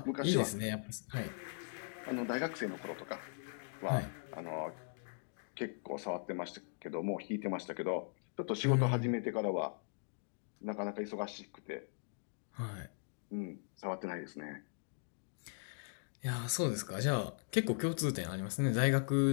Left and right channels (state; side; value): silent; right; digital silence